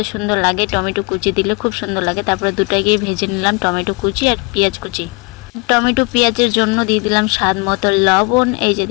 সুন্দর লাগে, টমেটো কুচি দিলে খুব সুন্দর লাগে। তারপরে দুটাকেই ভেজে নিলাম, টমেটো কুচি আর পেঁয়াজ কুচি। টমেটো পেঁয়াজের জন্য দিয়ে দিলাম স্বাদ মতো লবণ। এই যে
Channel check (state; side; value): quieter; right; 30.2 dB